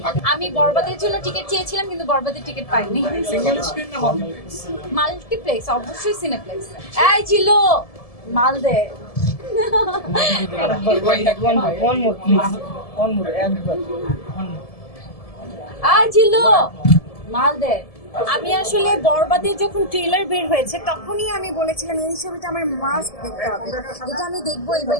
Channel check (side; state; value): right; late; 1.7 ms